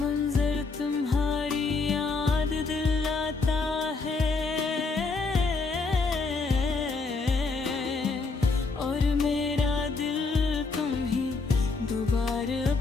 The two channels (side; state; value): right; quieter; 4.1 dB